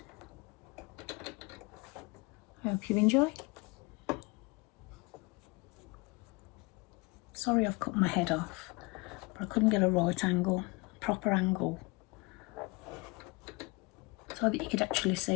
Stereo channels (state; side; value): quieter; right; 26.6 dB